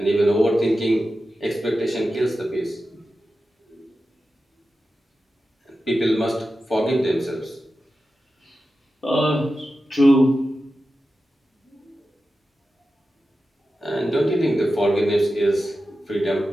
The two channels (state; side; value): normal; both; correlation 0.92